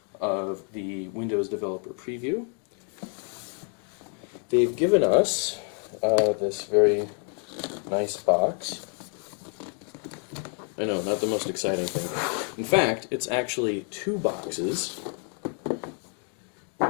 of the Windows Developer Preview. They've given us this very nice box. I know, not the most exciting thing. In fact, it's actually two boxes.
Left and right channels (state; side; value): quieter; right; 38.2 dB